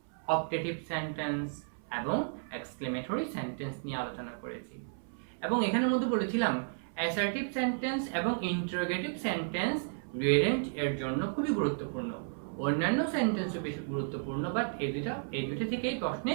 optative sentence এবং এক্সক্লেমেটরি সেন্টেন্স নিয়ে আলোচনা করেছি। এবং এখানের মধ্যে বলেছিলাম অ্যাসার্টিভ সেন্টেন্স এবং ইন্টারোগেটিভ সেন্টেন্স রিঅ্যারেঞ্জ এর জন্য খুবই গুরুত্বপূর্ণ। অন্যান্য সেন্টেন্সও বেশি গুরুত্বপূর্ণ, বাট এই দুটো থেকেই প্রশ্নে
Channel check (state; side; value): silent; left; 56 dB below the other